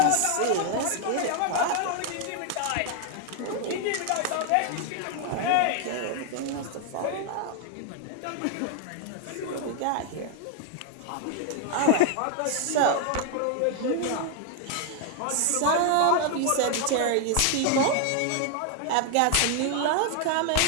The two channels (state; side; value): different; both; correlation 0.00